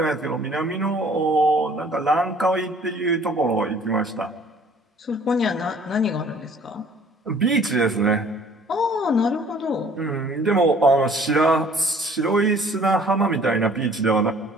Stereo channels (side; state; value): both; normal; correlation 0.54